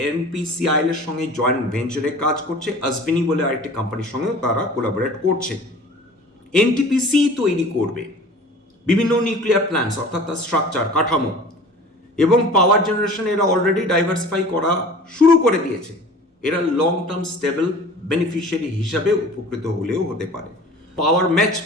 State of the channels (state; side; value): normal; both; correlation 0.43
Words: এনপিসিআইএল এর সঙ্গে জয়েন্ট ভেঞ্চারে কাজ করছে। আজভিনি বলে আরেকটি কোম্পানির সঙ্গেও তারা কোলাবোরেট করছে। এনটিপিসি তৈরি করবে বিভিন্ন নিউক্লিয়ার প্ল্যান্টস, অর্থাৎ তার স্ট্রাকচার, কাঠামো এবং পাওয়ার জেনারেশন এরা অলরেডি ডাইভার্সিফাই করা শুরু করে দিয়েছে। এরা লং টার্ম স্টেবল বেনিফিশিয়ারি হিসাবে উপকৃত হলেও হতে পারে। পাওয়ার ম্যাচ